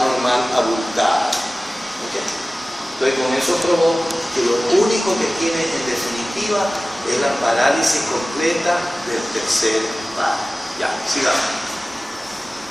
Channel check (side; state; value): both; normal; correlation 0.97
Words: abultada. ¿Okay? Entonces con eso probó que lo único que tiene en definitiva es la parálisis completa del tercer par. Ya, sigamos.